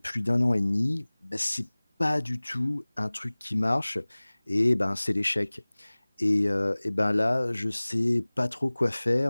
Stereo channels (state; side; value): inverted; both; correlation -1.00